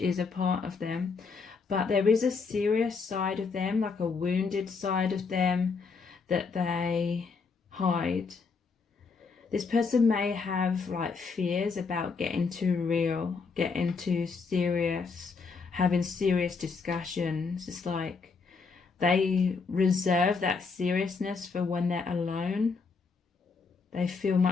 a part of them. But there is a serious side of them, like a wounded side of them, that they hide. This person may have like fears about getting too real, getting too serious, having serious discussions. It's like they reserve that seriousness for when they're alone. They feel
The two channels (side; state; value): right; quieter; 4.8 dB